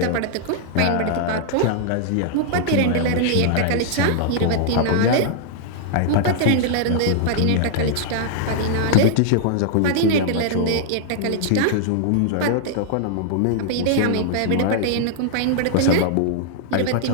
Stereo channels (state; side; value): different; both; correlation -0.01